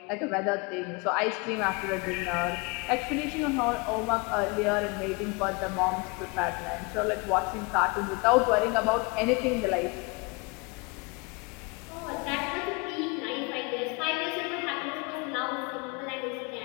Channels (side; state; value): right; quieter; 28.6 dB